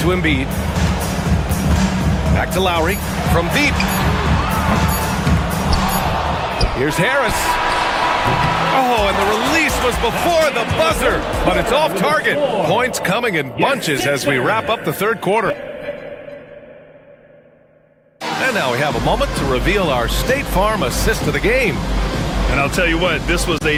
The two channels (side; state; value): both; identical; correlation 1.00